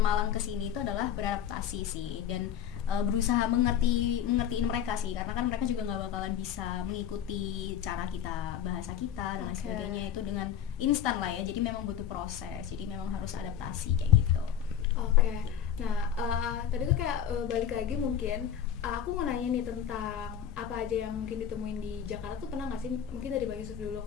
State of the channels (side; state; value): right; quieter; 9.4 dB